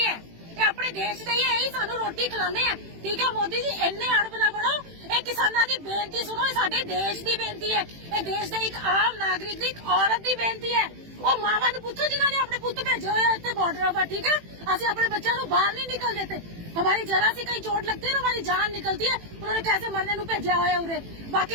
है, अपने देश ਦੇ ਹੀ ਸਾਨੂੰ ਰੋਟੀ ਖਿਲਾਉਂਦੇ ਆ, ਠੀਕ ਹੈ। ਮੋਦੀ ਜੀ ਇੰਨੇ ਅੜਬ ਨਾ ਬਣੋ, ਇਹ ਕਿਸਾਨਾਂ ਦੀ ਬੇਨਤੀ ਸੁਣੋ, ਇਹ ਸਾਡੇ ਦੇਸ਼ ਦੀ ਬੇਨਤੀ ਹੈ, ਇਹ ਦੇਸ਼ ਦੇ ਇੱਕ ਆਮ ਨਾਗਰਿਕ ਦੀ, ਇੱਕ ਔਰਤ ਦੀ ਬੇਨਤੀ ਹੈ। ਉਹ ਮਾਵਾਂ ਨੂੰ ਪੁੱਛੋ ਜਿਨ੍ਹਾਂ ਨੇ ਆਪਣੇ ਪੁੱਤ ਭੇਜੇ ਹੋਏ ਆ ਇੱਥੇ ਬਾਰਡਰ पर, ठीक है। ਅਸੀਂ ਆਪਣੇ ਬੱਚਿਆਂ ਨੂੰ ਬਾਹਰ नहीं निकल देते। हमारी जरा सी कहीं चोट लगती है ना, हमारी जान निकलती है। उन्होंने कैसे मरने ਨੂੰ ਭੇਜਿਆ ਹੋਇਆ ਉਰੇ।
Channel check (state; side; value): late; left; 18 ms